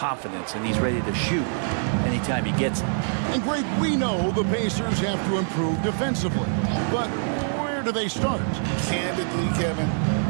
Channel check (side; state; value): left; silent; 62 dB below the other